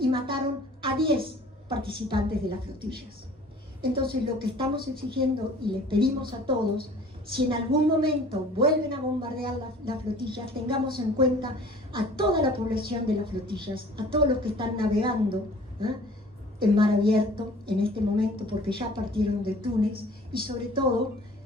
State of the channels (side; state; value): both; normal; correlation 0.49